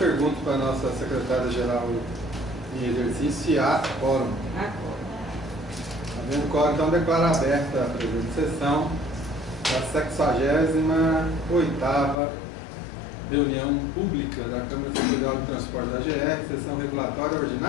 para a nossa secretária-geral em exercício se há quórum. Havendo quórum, então declaro aberta a presente sessão da 68ª reunião pública da Câmara Superior de Transporte da GR, sessão regulatória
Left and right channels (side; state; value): right; drops out; at 12.2 s